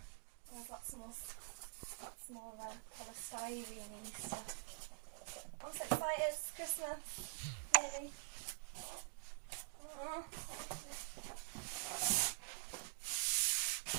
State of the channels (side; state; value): left; silent; digital silence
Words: Oh, I've got some more polystyrene stuff. I'm so excited, it's Christmas. Really. Oh.